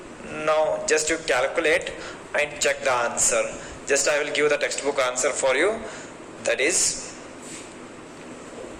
Now just you calculate and check the answer. Just I will give the textbook answer for you, that is,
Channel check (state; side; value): identical; both; correlation 1.00